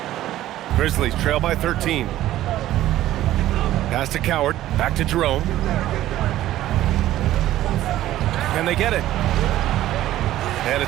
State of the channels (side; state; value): left; quieter; 14.0 dB